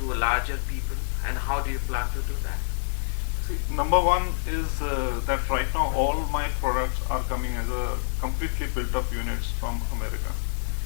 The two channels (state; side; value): silent; right; 60 dB below the other